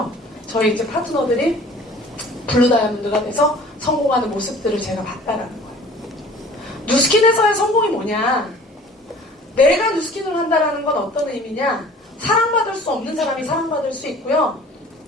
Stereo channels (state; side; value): normal; both; correlation 0.48